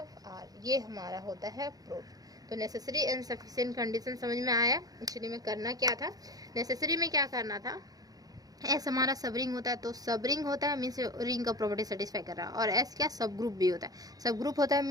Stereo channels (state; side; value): late; left; 0.18 ms